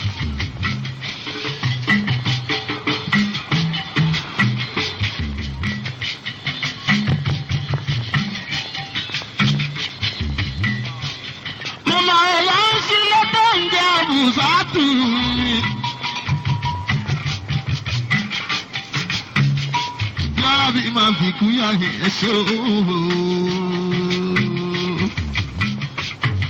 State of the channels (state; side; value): identical; both; correlation 1.00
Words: Mama Alhaji lọ́tọ̀ ń jẹ́ àbùsátù mi. Bí máa fi kú yá ni ẹ ṣe ooo.